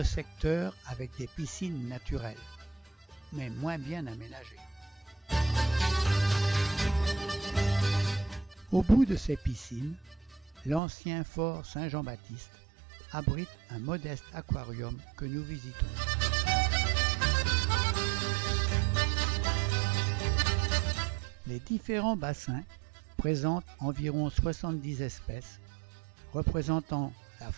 secteur avec des piscines naturelles, mais moins bien aménagées. Au bout de ces piscines, l'ancien fort Saint-Jean-Baptiste abrite un modeste aquarium que nous visitons. Les différents bassins présentent environ 70 espèces, représentant la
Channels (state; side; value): drops out; left; at 10.8 s